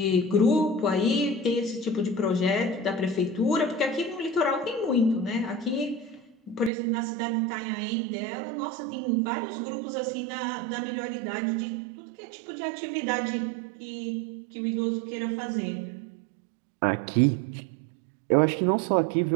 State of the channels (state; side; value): drops out; left; at 6.7 s